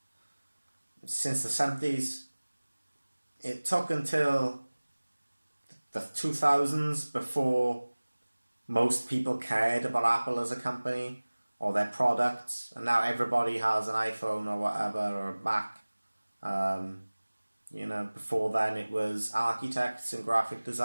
since the 70s. It took until the 2000s before most people cared about Apple as a company or their products, and now everybody has an iPhone or whatever, or a Mac. Before then it was architects and graphic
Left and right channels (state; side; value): inverted; both; correlation -1.00